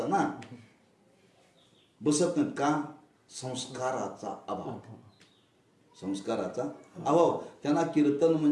ना. बसत नाहीत का? संस्काराचा अभाव. संस्काराचा अभाव. त्यांना कीर्तन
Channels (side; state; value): both; identical; correlation 1.00